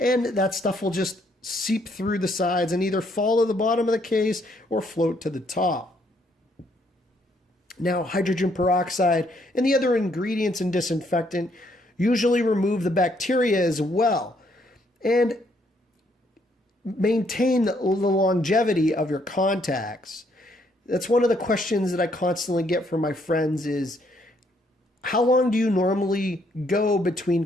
that stuff will just seep through the sides and either fall to the bottom of the case or float to the top. Now, hydrogen peroxide and the other ingredients in disinfectant usually remove the bacteria as well and maintain the longevity of your contacts. That's one of the questions that I constantly get from my friends is, how long do you normally go between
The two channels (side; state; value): both; normal; correlation 0.70